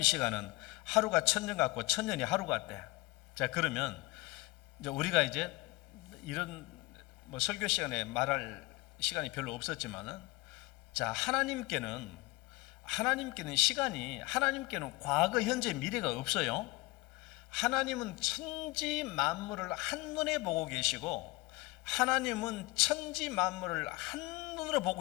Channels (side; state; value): right; quieter; 22.9 dB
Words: 시간은 하루가 천년 같고 천년이 하루 같대. 자 그러면 이제 우리가 이제 이런 뭐 설교 시간에 말할 시간이 별로 없었지만은 자 하나님께는 시간이 하나님께는 과거, 현재, 미래가 없어요. 하나님은 천지 만물을 한눈에 보고 계시고 하나님은 천지 만물을 한눈으로 보고